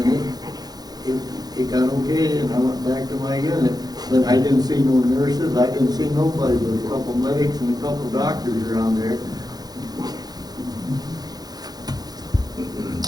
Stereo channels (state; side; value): late; left; 0.19 ms